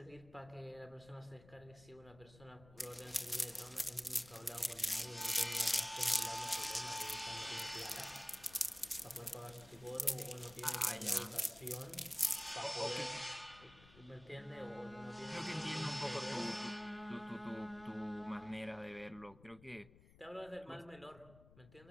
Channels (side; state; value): left; noise; rumble, 22 dB below the sound